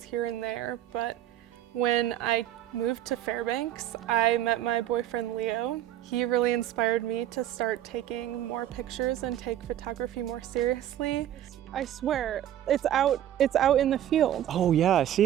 here and there, but when I moved to Fairbanks, I met my boyfriend Leo. He really inspired me to start taking more pictures and take photography more seriously. I swear, it's out in the field. Oh yeah, I see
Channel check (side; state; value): left; quieter; 11.9 dB